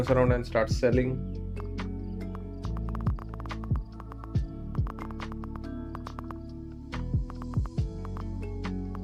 around and starts selling.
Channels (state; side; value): identical; both; correlation 1.00